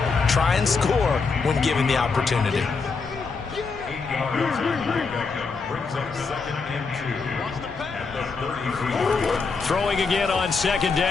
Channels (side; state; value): right; quieter; 4.6 dB